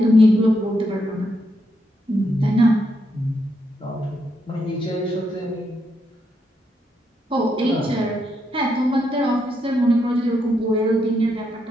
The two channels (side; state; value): both; normal; correlation 0.79